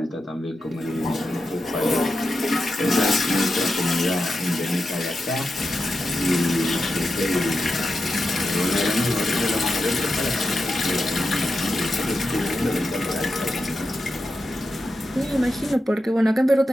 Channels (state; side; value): normal; both; correlation 0.89